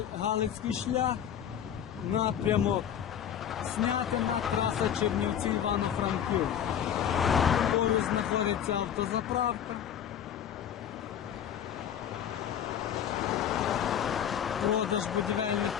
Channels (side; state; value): right; quieter; 9.3 dB